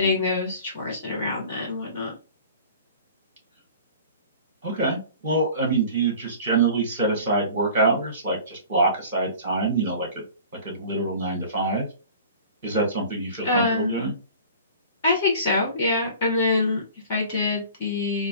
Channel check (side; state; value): both; inverted; correlation -0.43